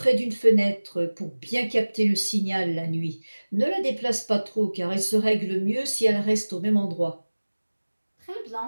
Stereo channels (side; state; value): both; inverted; correlation -1.00